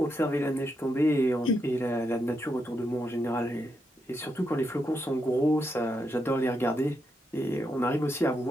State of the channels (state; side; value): normal; both; correlation 0.82